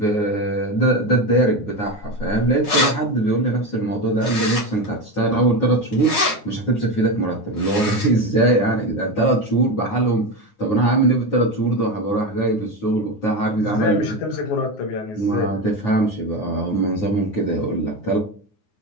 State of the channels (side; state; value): right; late; 9.6 ms